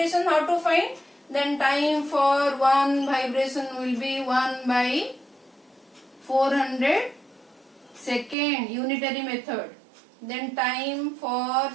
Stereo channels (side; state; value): left; drops out; at 8.3 s